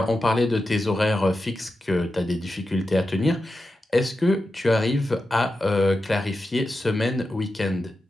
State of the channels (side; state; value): both; normal; correlation 0.90